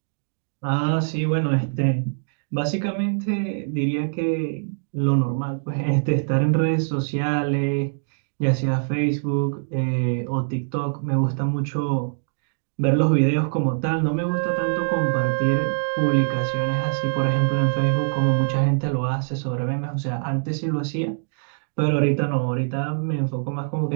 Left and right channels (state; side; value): silent; left; digital silence